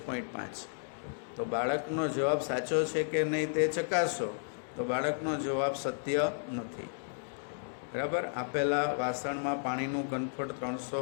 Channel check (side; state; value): right; silent; digital silence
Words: તો બાળકનો જવાબ સાચો છે કે નહીં તે ચકાસો. તો બાળકનો જવાબ સત્ય નથી. બરાબર. આપેલા વાસણમાં પાણીનું ઘનફળ